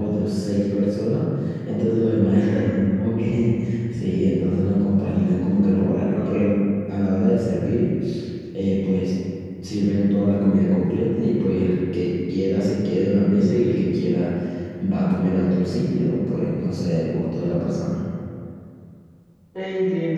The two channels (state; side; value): identical; both; correlation 1.00